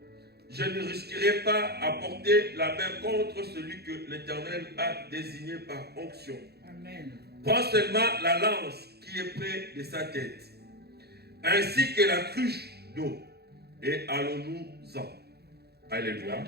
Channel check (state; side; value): late; left; 0.47 ms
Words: je ne risquerai pas à porter la main contre celui que l'Éternel a désigné par onction. Amen. Prends seulement la lance qui est près de sa tête, ainsi que la cruche d'eau, et allons-nous-en. Alléluia.